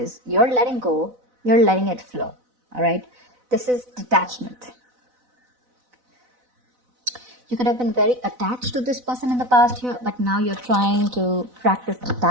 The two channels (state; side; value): late; left; 4.0 ms